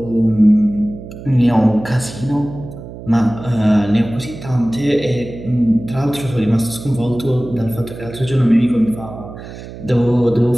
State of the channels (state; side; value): noise; right; hum, 13 dB below the sound